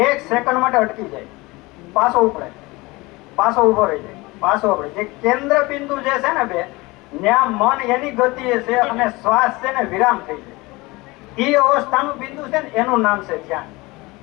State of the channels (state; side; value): quieter; right; 22.6 dB